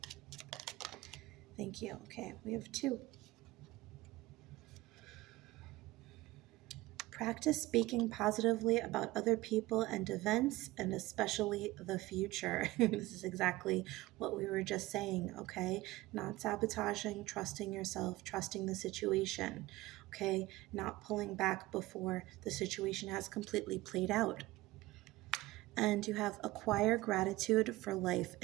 Thank you. Okay, we have 2. Practice speaking positively about other people and events, and especially the future. This is exactly what we were just saying, okay? Not sabotaging, trusting yourself, trusting the situation, okay? Not pulling back before the situation has completely played out. And you have acquire gratitude for life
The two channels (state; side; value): quieter; left; 18.8 dB